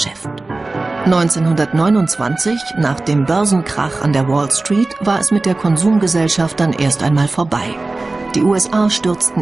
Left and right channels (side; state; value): left; quieter; 3.2 dB